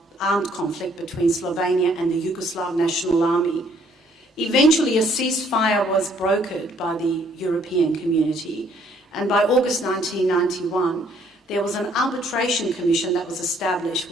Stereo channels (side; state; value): both; normal; correlation 0.64